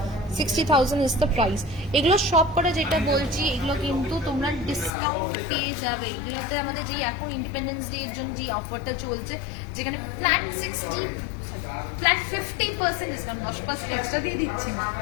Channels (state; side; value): drops out; right; at 4.9 s